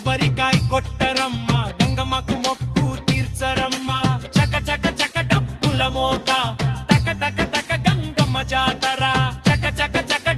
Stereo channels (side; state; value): both; identical; correlation 1.00